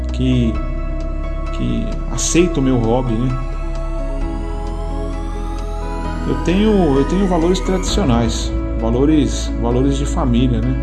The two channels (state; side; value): identical; both; correlation 1.00